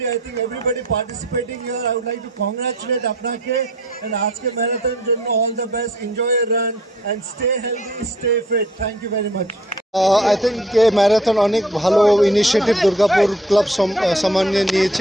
I think everybody participating here, I would like to congratulate apnake, and aajke marathon jonno all the best. Enjoy your run and stay healthy, stay fit. Thank you very much. I think marathon অনেক ভালো initiative Durgapur club সামান্য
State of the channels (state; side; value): normal; both; correlation 0.57